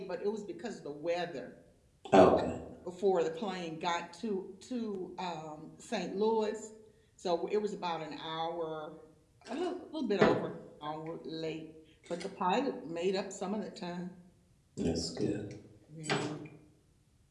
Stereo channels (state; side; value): identical; both; correlation 1.00